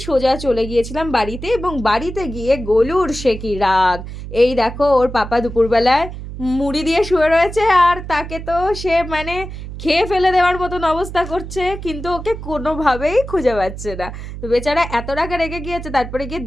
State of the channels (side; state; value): right; noise; hum, 10 dB below the sound